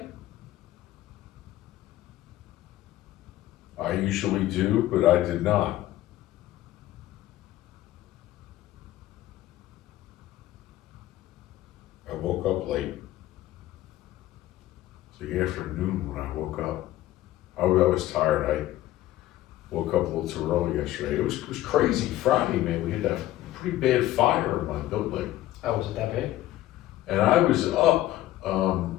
I usually do, but I did not. I woke up late. It's the afternoon when I woke up. I was tired. I woke up a little too early yesterday. It was crazy Friday, man. We had that pretty bad fire in my building. Oh, was it that bad? And I was up,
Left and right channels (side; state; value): right; quieter; 14.8 dB